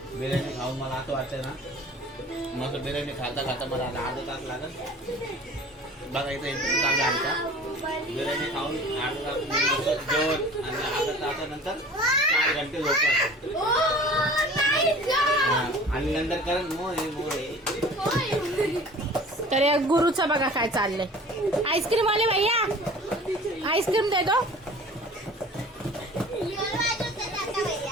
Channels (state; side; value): normal; both; correlation 0.44